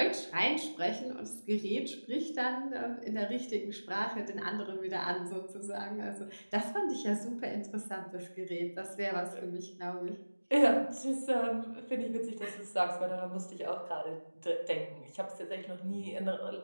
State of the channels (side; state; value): both; inverted; correlation -1.00